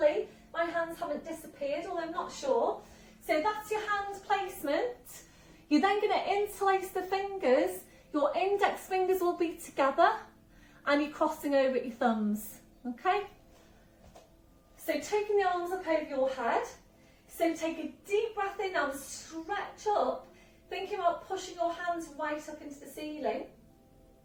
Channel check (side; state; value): both; identical; correlation 1.00